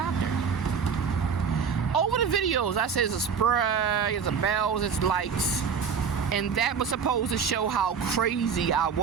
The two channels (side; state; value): left; quieter; 6.4 dB